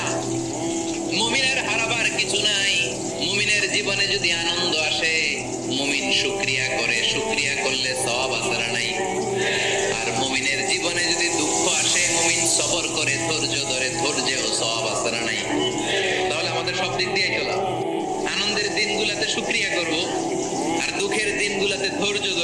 মুমিনের হারাবার কিছু নাই। মুমিনের জীবনে যদি আনন্দ আসে, মুমিন শুকরিয়া করে, শুকরিয়া করলে সওয়াব আছে না নাই? আর মুমিনের জীবনে যদি দুঃখ আসে, মুমিন সবর করে, ধৈর্য ধরে, ধৈর্যেও সওয়াব আছে না নাই? তাহলে আমাদের সব দিক দিয়ে চলা, আনন্দের দিনগুলোতে শুকরিয়া করব, আর দুঃখের দিনগুলোতে ধৈর্য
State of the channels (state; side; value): identical; both; correlation 1.00